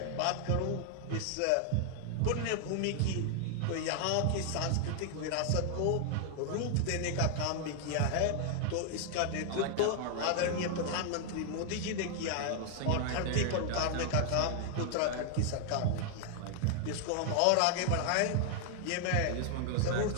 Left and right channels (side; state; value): both; different; correlation 0.00